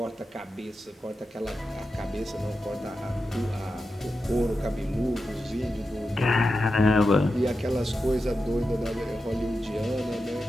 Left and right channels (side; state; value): both; normal; correlation 0.90